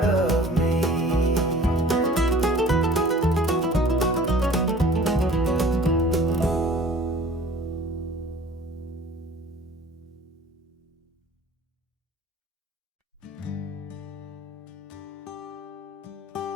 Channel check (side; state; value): both; normal; correlation 0.48